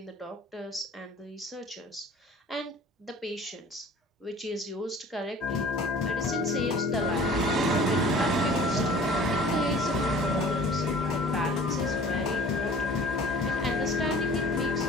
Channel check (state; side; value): normal; both; correlation 0.47